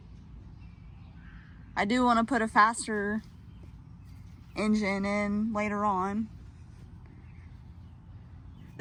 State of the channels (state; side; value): identical; both; correlation 1.00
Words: I do want to put a faster engine in later on.